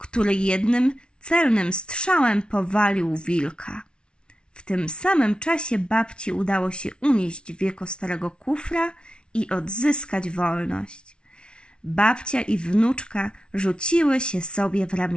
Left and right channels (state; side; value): late; right; 0.056 ms